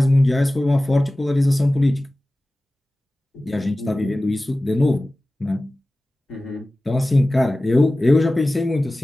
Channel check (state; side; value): normal; both; correlation 0.97